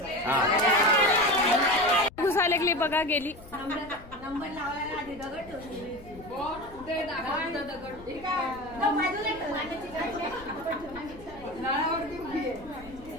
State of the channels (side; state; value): left; noise; rumble, 19 dB below the sound